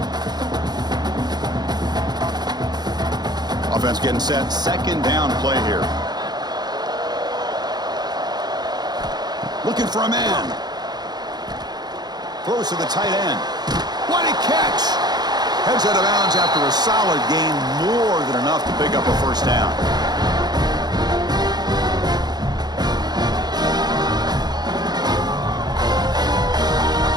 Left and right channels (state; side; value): late; left; 0.20 ms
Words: Offense getting set. Second down play here. Looking for a man. Throws to the tight end. What a catch! Heads out of bounds after a solid gain, more than enough to pick up a first down.